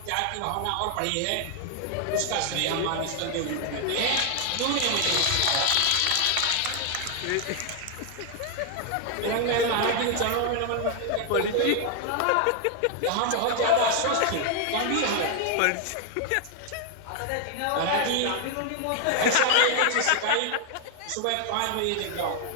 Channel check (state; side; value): different; both; correlation 0.00